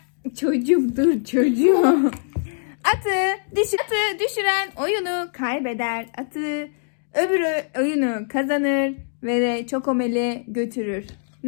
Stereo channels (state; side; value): silent; right; digital silence